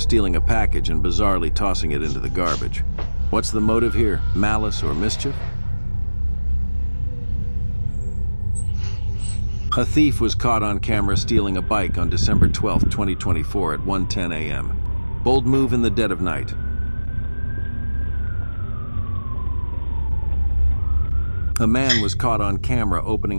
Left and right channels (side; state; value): both; inverted; correlation -1.00